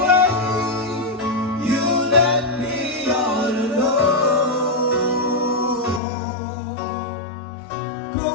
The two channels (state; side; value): drops out; right; at 6.0 s